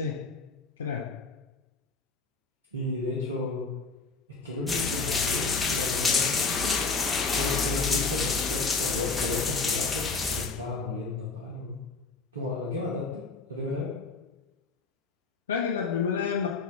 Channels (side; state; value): right; quieter; 4.2 dB